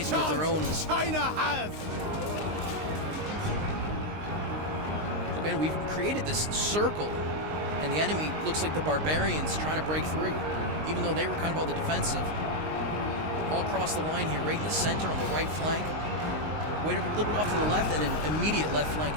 their own. China has. Again, we've created this circle, and the enemy looks like the barbarians trying to break through, even though they were kind of on the defensive. All across the line here, right in the center on the right flank. Wait a little bit off to the left, and then immediate left flank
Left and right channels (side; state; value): left; late; 19 ms